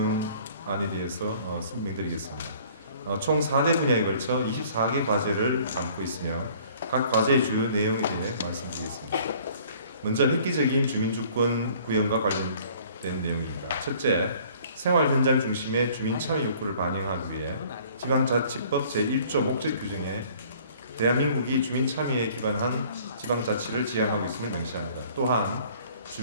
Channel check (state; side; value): inverted; both; correlation -0.54